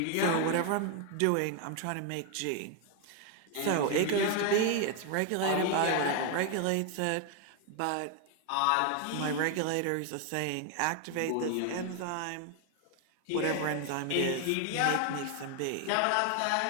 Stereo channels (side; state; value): both; different; correlation 0.01